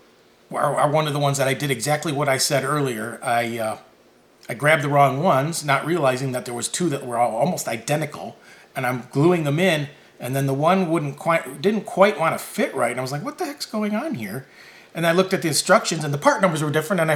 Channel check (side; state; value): both; identical; correlation 1.00